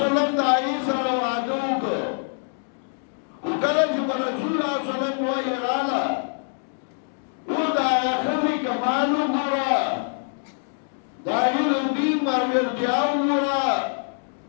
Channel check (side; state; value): right; silent; 62 dB below the other